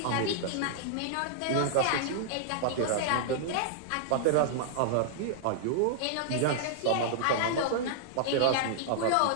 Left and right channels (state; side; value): different; both; correlation -0.01